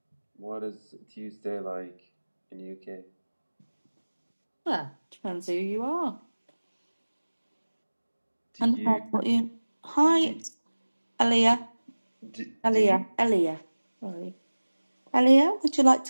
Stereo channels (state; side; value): inverted; both; correlation -1.00